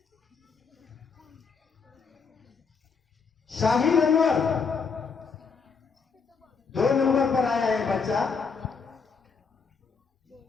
शाहीन अनवर 2 नंबर पर आया है बच्चा।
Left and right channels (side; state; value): right; quieter; 5.3 dB